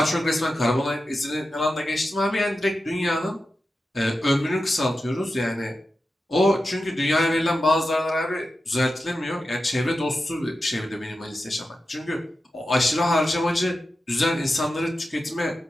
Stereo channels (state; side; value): normal; both; correlation 0.91